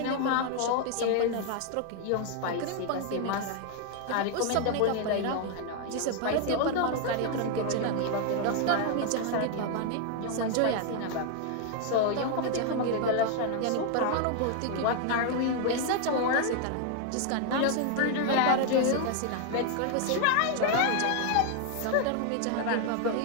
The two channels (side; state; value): both; different; correlation 0.00